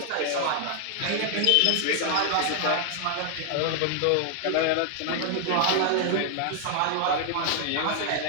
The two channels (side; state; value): both; different; correlation 0.00